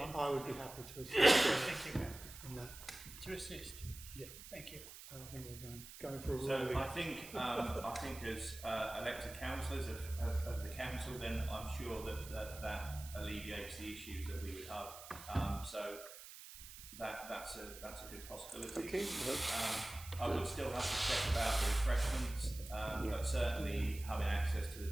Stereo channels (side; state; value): right; noise; hiss, 14 dB below the sound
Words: would be happy to assist Thank you. in that. To assist. Yeah. Thank you. I think we're going for a So ruling. I think as elected councillors of the council, then I'm sure that alleviates the issues that we would have. So that's a good possibility. Okay. I would still have to check about the refreshments, but certainly having access to the